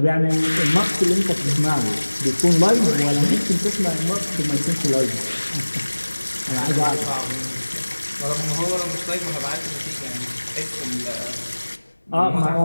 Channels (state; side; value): inverted; both; correlation -1.00